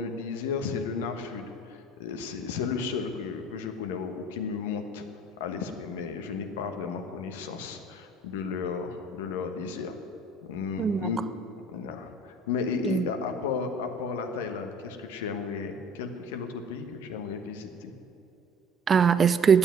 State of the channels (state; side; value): normal; both; correlation 0.48